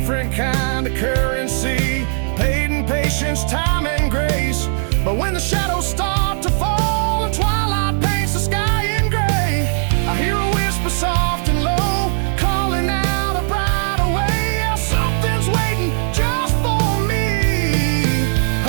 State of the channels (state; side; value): silent; left; digital silence